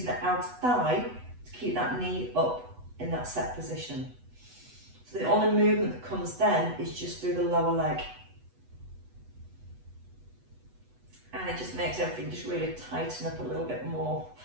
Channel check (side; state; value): left; late; 8.1 ms